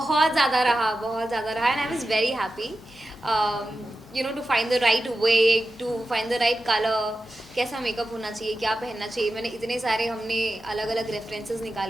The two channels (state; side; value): normal; both; correlation 0.92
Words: ज़्यादा रहा and I was very happy you know to find the right way, to find the right colour, कैसा मेकअप होना चाहिए, क्या पहनना चाहिए। मैंने इतने सारे हमने अलग अलग रेफरेंसेस